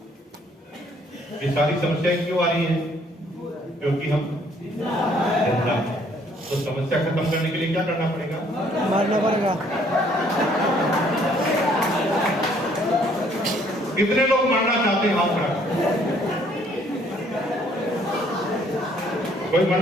ये सारी समस्याएं क्यों आ रही हैं? क्योंकि हम जिंदा हैं। तो समस्या खत्म करने के लिए क्या करना पड़ेगा? मारना पड़ेगा। कितने लोग मरना चाहते हैं? हाथ खड़ा। कोई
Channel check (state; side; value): normal; both; correlation 0.63